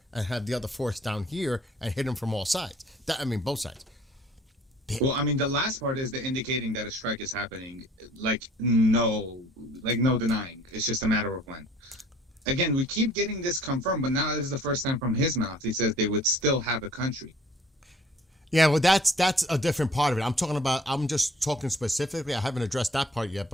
and have the other force down here and hit them from all sides. Both sides. Well, the last part is the indicating that a strike is happening. No denying. It's just a matter of when. Again, we keep getting this confirmed, but now this is the first time from his mouth. He says they would still have a country. Yeah, well, that's a different part of it. I'm just talking specifically. I haven't addressed that part yet,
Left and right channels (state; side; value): normal; both; correlation 0.55